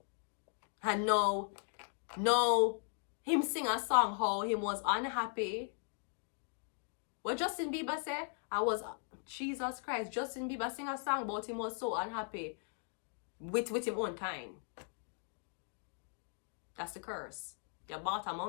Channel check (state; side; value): silent; right; 52 dB below the other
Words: And no, him sing a song how he was unhappy. What Justin Bieber said? Jesus Christ, Justin Bieber sing a song about him was so unhappy with him own kind. That's the curse. You bought a